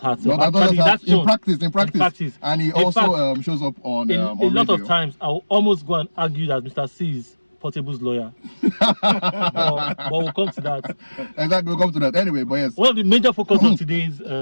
heart. No, in practice. And he also shows up on a lot of times. I'll almost go and argue that Mr. C is Portable's lawyer. but we'll come to that. Exactly, we'll come to that. Anyway, but yes. One of the major focus of today's,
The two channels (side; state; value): both; inverted; correlation -1.00